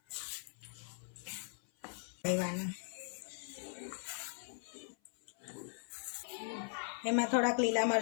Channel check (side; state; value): right; silent; 51 dB below the other